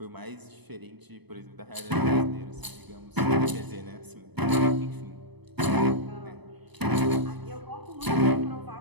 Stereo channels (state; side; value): late; left; 0.99 ms